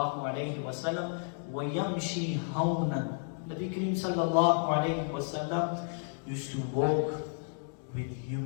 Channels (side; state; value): right; silent; 56 dB below the other